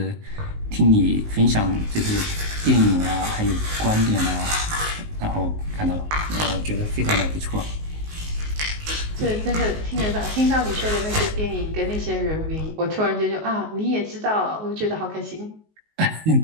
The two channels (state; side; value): late; left; 19 ms